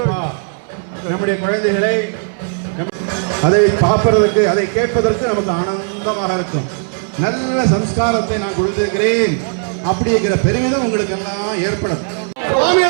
நம்முடைய குழந்தைகளை அதை பார்ப்பதற்கு, அதை கேட்பதற்கு நமக்கு ஆனந்தமாக இருக்கும். நல்ல சம்ஸ்காரத்தை நான் கொடுத்திருக்கிறேன் அப்படிங்கிற பெருமிதம் உங்களுக்கு எல்லாம் ஏற்படும்.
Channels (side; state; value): left; silent; digital silence